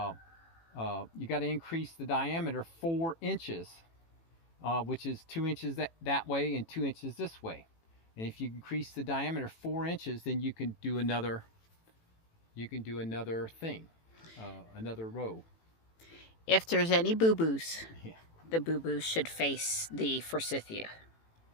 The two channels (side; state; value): right; late; 18 ms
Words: you got to increase the diameter 4 inches, which is 2 inches that way and 2 inches this way. And if you increase the diameter 4 inches, then you can do another thing, another row. If there's any boo-boos, the boo-boos should face the forsythia.